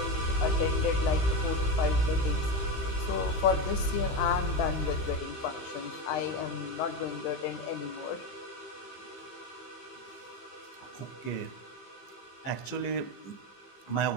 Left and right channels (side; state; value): right; late; 15 ms